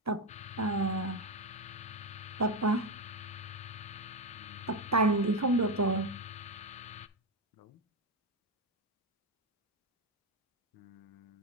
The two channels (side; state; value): both; normal; correlation 0.11